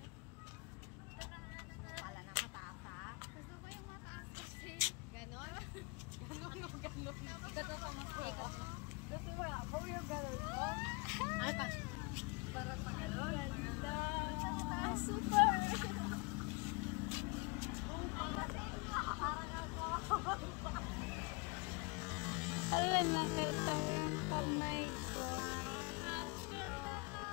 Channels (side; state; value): right; quieter; 30.0 dB